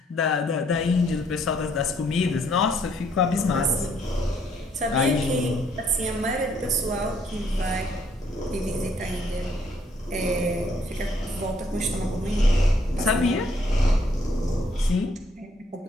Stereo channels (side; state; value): both; normal; correlation 0.68